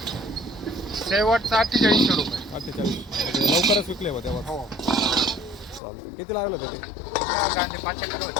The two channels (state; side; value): drops out; right; at 5.8 s